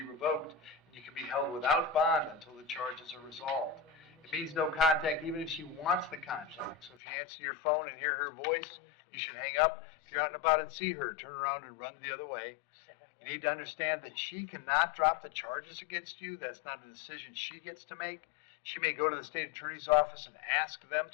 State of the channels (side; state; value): right; drops out; at 7.0 s